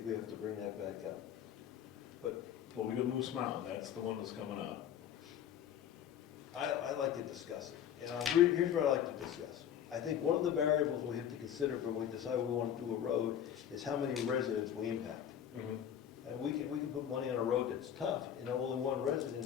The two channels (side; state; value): right; quieter; 9.6 dB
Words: we have to bring that back up. But Well, we got Moose Mountain, that's the one that's coming up. I like to discuss it. Here's what I like to discuss. I think one of the variables we have to consider when we decide we want to do a road is how many residents we impact. And we can put money on a road that's tough, and only one